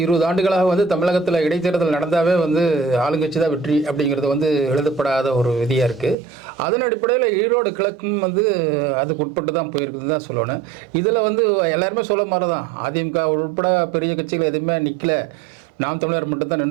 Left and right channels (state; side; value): drops out; left; at 6.2 s